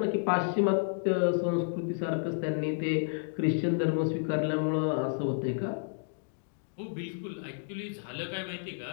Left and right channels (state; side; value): silent; right; digital silence